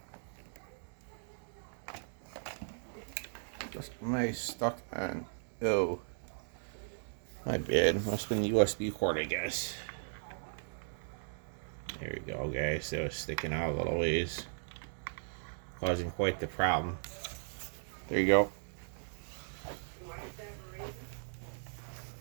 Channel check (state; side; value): silent; left; digital silence